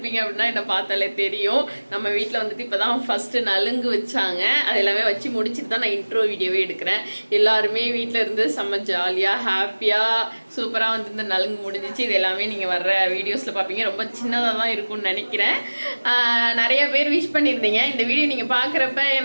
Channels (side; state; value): both; inverted; correlation -1.00